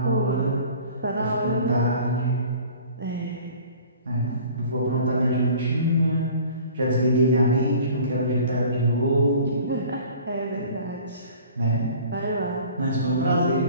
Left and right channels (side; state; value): both; inverted; correlation -0.47